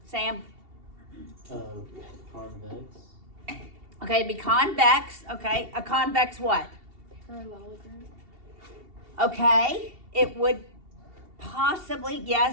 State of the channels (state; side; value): late; left; 2.7 ms